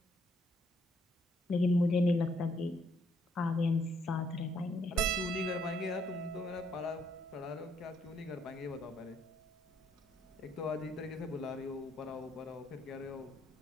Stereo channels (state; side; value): normal; both; correlation 0.70